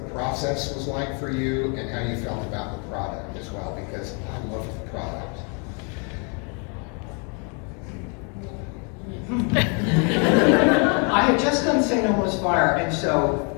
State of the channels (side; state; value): right; quieter; 36.9 dB